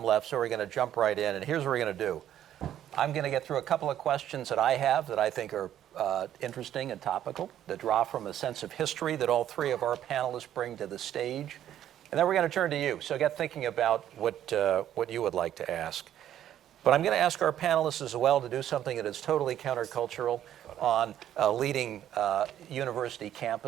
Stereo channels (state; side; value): quieter; left; 11.2 dB